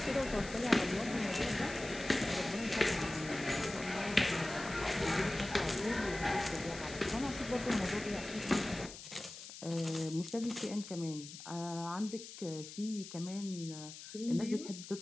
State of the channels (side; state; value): left; noise; hiss, 13 dB below the sound